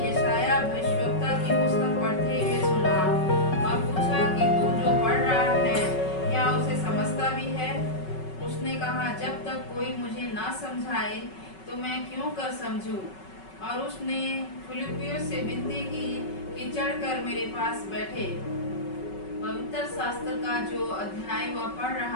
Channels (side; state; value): right; late; 5.3 ms